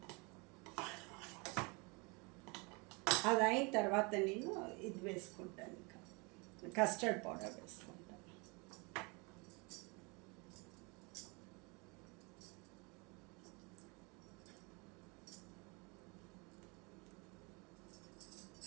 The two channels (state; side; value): quieter; left; 29.8 dB